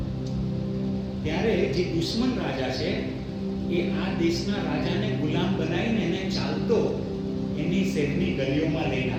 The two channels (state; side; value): identical; both; correlation 1.00